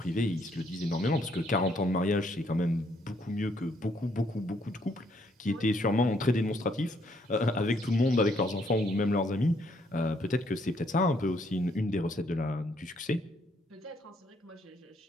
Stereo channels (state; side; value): normal; both; correlation 0.70